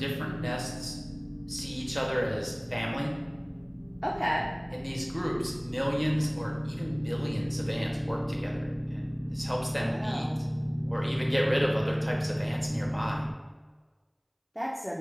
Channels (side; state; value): both; identical; correlation 1.00